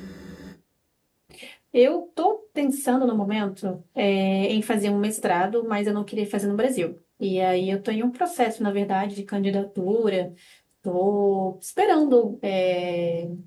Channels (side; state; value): both; identical; correlation 1.00